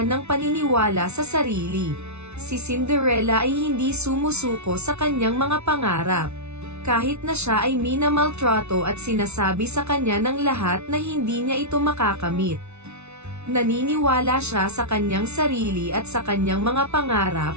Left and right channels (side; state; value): left; late; 0.81 ms